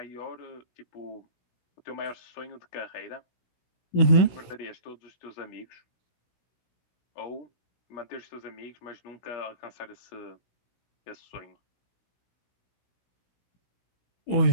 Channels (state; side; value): late; right; 16 ms